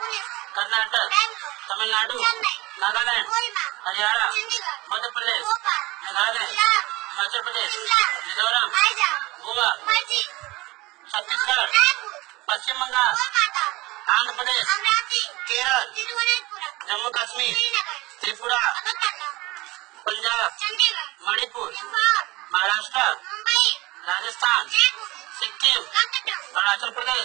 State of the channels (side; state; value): left; quieter; 20.9 dB